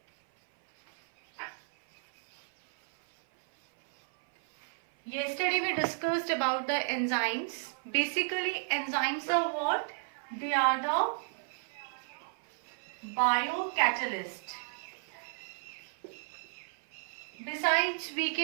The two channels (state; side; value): silent; left; 56 dB below the other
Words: Yesterday we discussed about the enzymes. Basically, enzymes are what? They are the biocatalyst. Besides, we